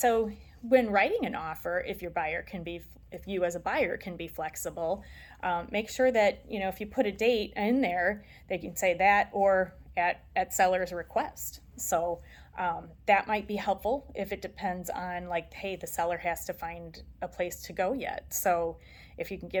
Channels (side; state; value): both; identical; correlation 1.00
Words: when writing an offer, if you as a buyer can be flexible, make sure that, if you put a date in there, they can say that or at seller's request. So that might be helpful if it depends on hey, the seller has to find a place to go yet. So if you can